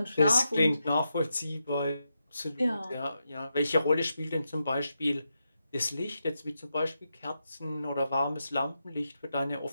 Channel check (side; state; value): both; inverted; correlation -0.86